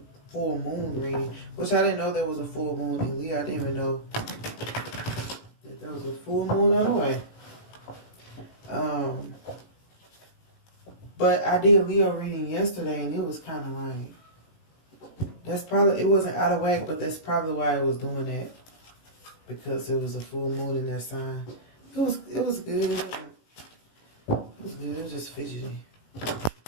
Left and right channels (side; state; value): right; late; 18 ms